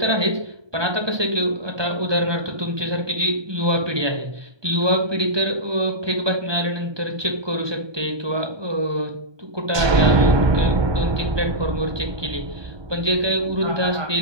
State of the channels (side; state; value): left; late; 1.2 ms